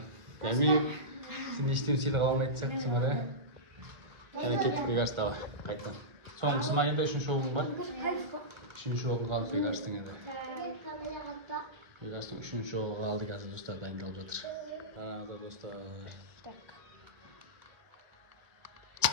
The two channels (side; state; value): left; late; 1.5 ms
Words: Дамир, сен ештен сыйлық алмайды сияқтысың бар, Яна кеттік Бекарыс тағы, қайттан. Соңғысы ма енді 3-ші оғың бар? 3-ші оғың қалды Бекарыстың енді. Бекарыстың 3-ші оғы қалды қазір достар, дайындалып жатыр. Қараңыздар достар.